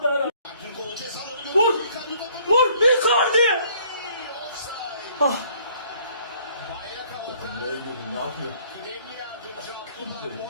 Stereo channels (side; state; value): both; inverted; correlation -0.60